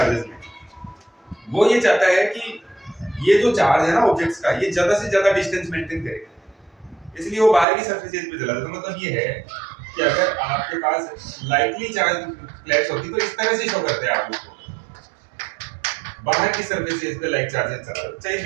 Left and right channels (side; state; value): left; drops out; at 7.7 s